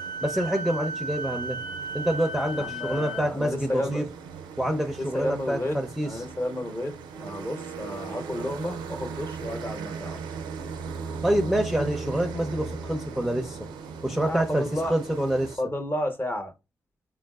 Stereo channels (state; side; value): normal; both; correlation 0.83